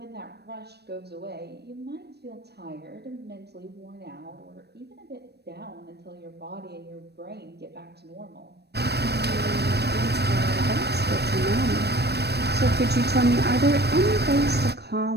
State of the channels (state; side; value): late; left; 0.48 ms